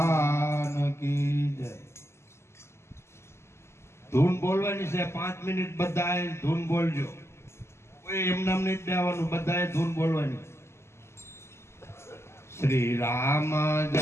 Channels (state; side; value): late; right; 0.13 ms